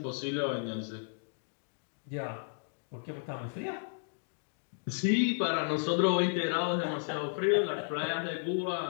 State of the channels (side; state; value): right; silent; digital silence